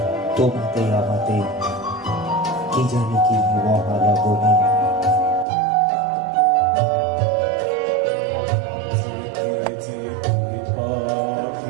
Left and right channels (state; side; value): drops out; left; at 5.5 s